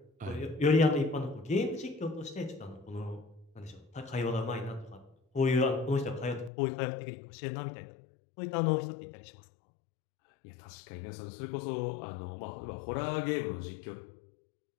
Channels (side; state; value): right; drops out; at 6.5 s